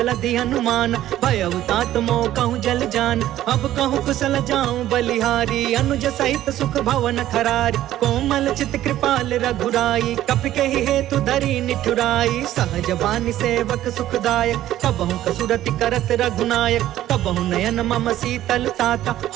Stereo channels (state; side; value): quieter; left; 13.3 dB